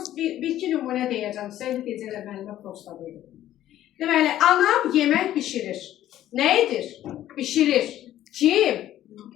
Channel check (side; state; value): right; quieter; 12.8 dB